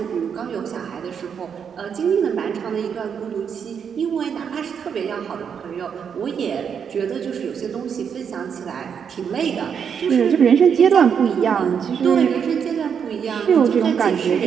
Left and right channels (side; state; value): left; quieter; 7.3 dB